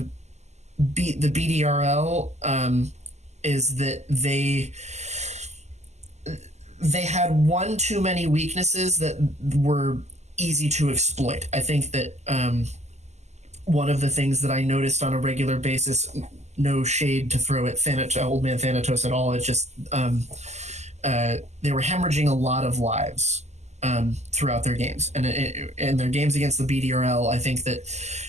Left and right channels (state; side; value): late; left; 0.33 ms